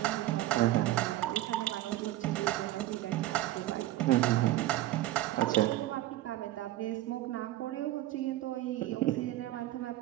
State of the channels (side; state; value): left; quieter; 15.2 dB